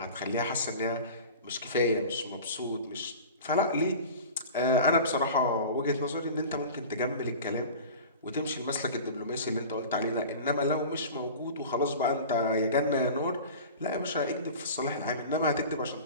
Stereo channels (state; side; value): inverted; both; correlation -0.37